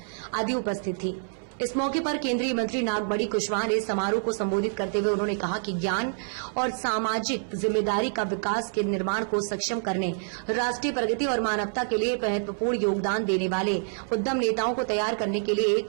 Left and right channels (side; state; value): left; silent; 59 dB below the other